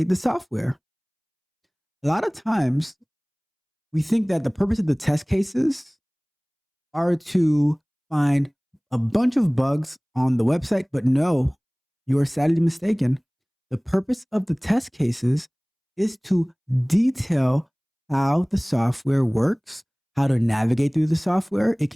the software. A lot of times, we think that the purpose of the test cases are to find a bunch of bugs on the website, but no, you are sadly mistaken. The purpose of the test cases is to detail how the software works, how to navigate through the software. It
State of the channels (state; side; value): identical; both; correlation 1.00